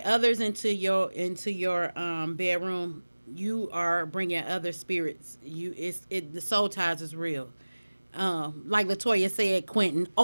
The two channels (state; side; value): inverted; both; correlation -1.00